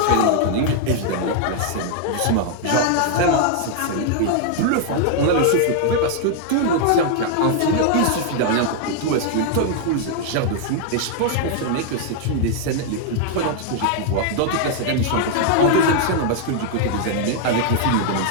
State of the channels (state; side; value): different; both; correlation 0.00